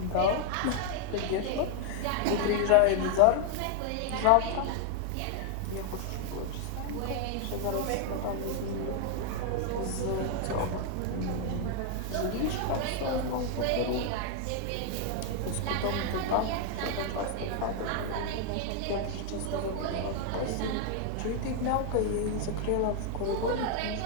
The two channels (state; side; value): different; both; correlation 0.00